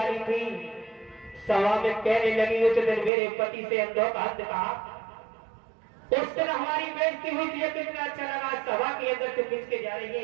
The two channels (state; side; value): drops out; left; at 3.1 s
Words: थी सभा में कहने लगी उस दिन मेरे पति से अंधोपात कहा। उस दिन हमारी बेइज्जती हुई थी, कितना अच्छा लगा। सभा के अंदर से खींच के जा रही